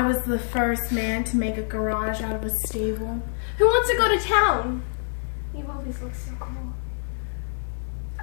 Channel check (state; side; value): silent; right; 61 dB below the other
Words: was the first man to make a garage out of a stable? Who wants to go to town? You always look so cool.